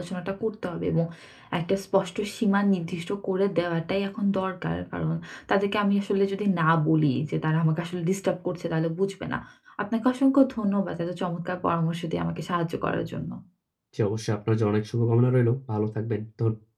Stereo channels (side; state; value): both; identical; correlation 1.00